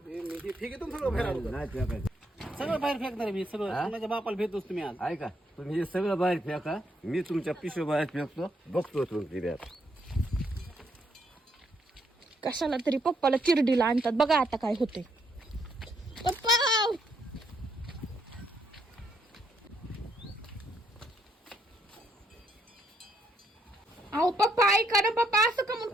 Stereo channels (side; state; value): both; normal; correlation 0.74